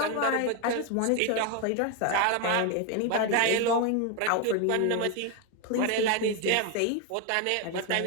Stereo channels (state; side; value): different; both; correlation 0.01